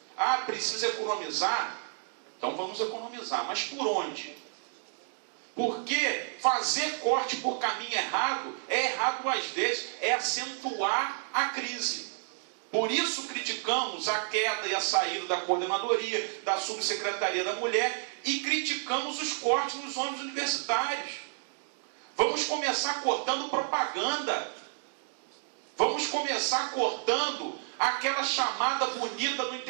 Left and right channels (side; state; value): left; silent; digital silence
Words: Ah, precisa economizar? Então vamos economizar, mas por onde? Porque fazer corte por caminho errado é errado às vezes, é acentuar a crise. Por isso criticamos a queda e a saída da coordenadoria, da subsecretaria da mulher, e criticamos os cortes nos ônibus universitários. Vamos começar cortando propaganda. Vamos começar cortando aquela chamada bonita no